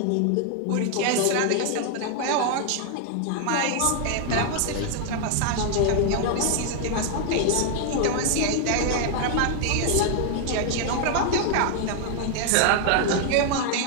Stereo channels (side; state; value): both; different; correlation 0.00